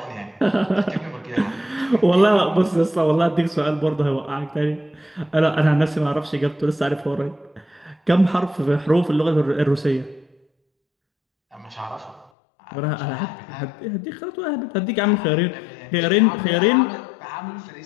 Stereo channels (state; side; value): drops out; right; at 12.3 s